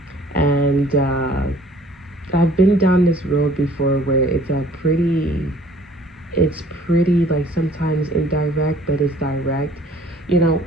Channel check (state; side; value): normal; both; correlation 0.55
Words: I've been down this road before where it's pretty like sometimes indirect, but it's direct, you know.